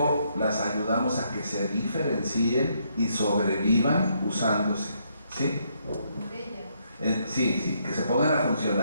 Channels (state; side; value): inverted; both; correlation -0.74